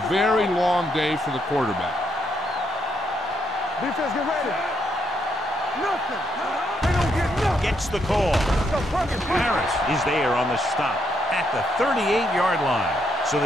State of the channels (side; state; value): both; normal; correlation 0.76